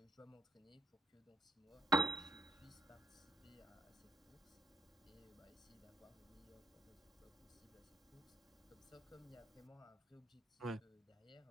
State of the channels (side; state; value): both; normal; correlation 0.74